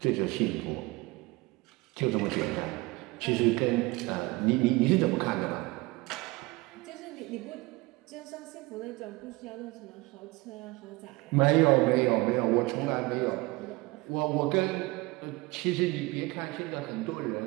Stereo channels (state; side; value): quieter; left; 22.7 dB